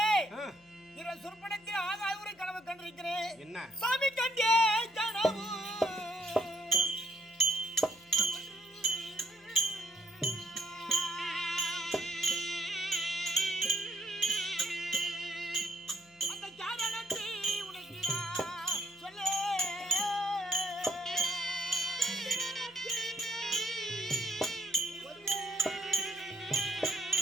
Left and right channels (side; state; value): left; noise; hum, 30 dB below the sound